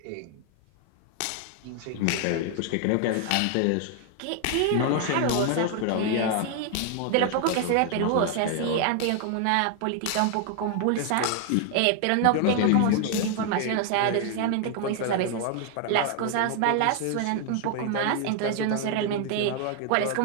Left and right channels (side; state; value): both; different; correlation 0.00